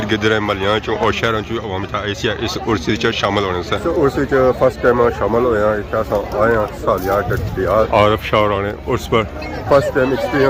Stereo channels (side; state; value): both; identical; correlation 1.00